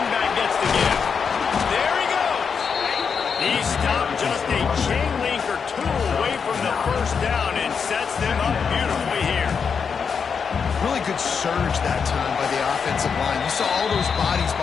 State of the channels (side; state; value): right; quieter; 6.2 dB